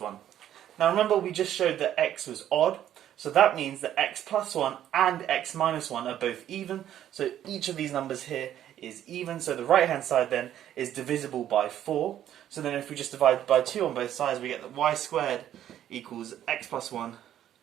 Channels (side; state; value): left; quieter; 11.2 dB